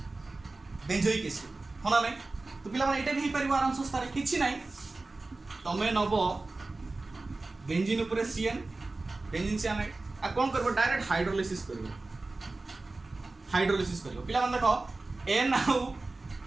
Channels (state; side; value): quieter; left; 3.3 dB